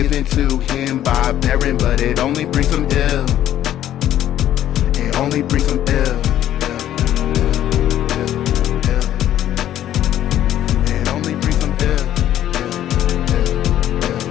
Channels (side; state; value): right; quieter; 11.9 dB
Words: to him by Beren, but it only brings him ill. It only brings him ill. It only brings him ill.